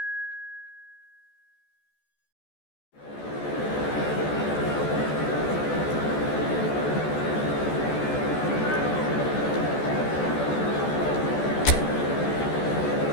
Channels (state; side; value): late; right; 14 ms